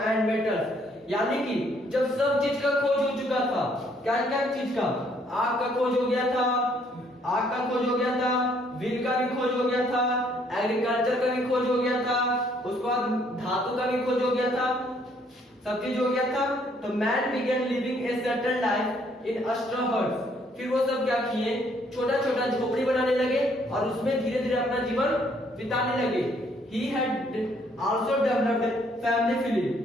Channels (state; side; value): normal; both; correlation 0.66